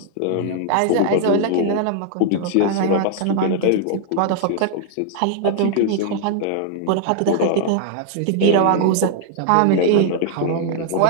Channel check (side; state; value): both; different; correlation 0.00